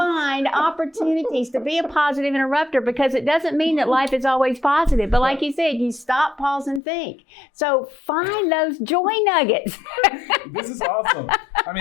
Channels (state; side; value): drops out; right; at 6.8 s